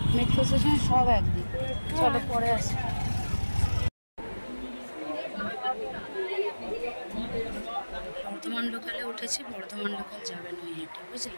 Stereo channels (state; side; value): inverted; both; correlation -1.00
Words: মেট্রো স্টেশন সব একদিক। চলো পরে আসি। বর্ধমান লোকালে উঠেছি, বর্ধমান লোকাল যাবে নৈহাটি,